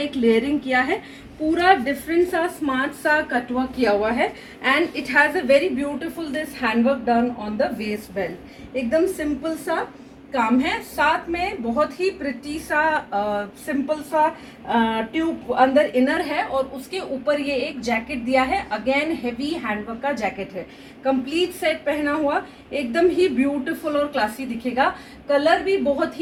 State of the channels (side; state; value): both; identical; correlation 1.00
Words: लेयरिंग किया है, पूरा डिफरेंट सा स्मार्ट सा कटवर्क किया हुआ है. And it has a very beautiful this handwork done on the waste belt. एकदम सिंपल सा काम है, साथ में बहुत ही प्रिटी सा सिंपल सा ट्यूब अंदर इनर है और उसके ऊपर ये एक जैकेट दिया है. अगेन हेवी हैंडवर्क का जैकेट है, कंप्लीट सेट पहना हुआ, एकदम ही ब्यूटीफुल और क्लासी दिखेगा. कलर भी बहुत